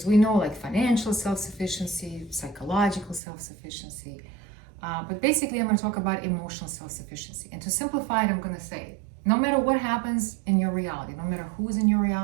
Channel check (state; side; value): drops out; left; at 3.2 s